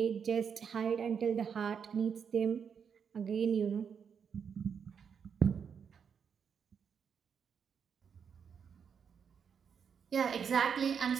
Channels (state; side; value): quieter; left; 7.0 dB